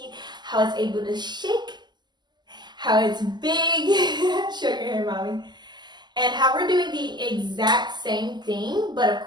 how it's able to shake, how it's big. Show your hair, mommy. And how we're doing the exact same thing, but of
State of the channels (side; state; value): left; late; 0.21 ms